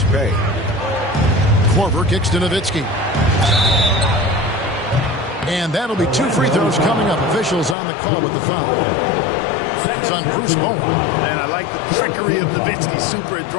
pay. Korver kicks to Nowitzki. And that'll be 2 free throws coming up. Officials on the call with the foul. It's on Bruce Bowen. And I like the trickery of Nowitzki. Super at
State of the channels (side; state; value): right; drops out; at 7.8 s